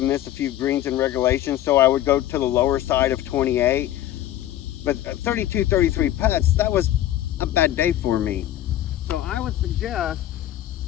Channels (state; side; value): quieter; right; 13.0 dB